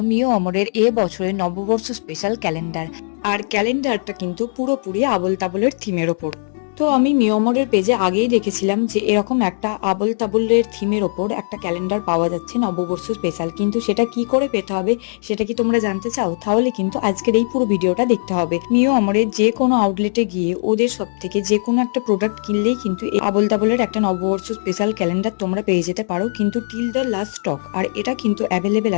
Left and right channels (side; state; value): right; silent; digital silence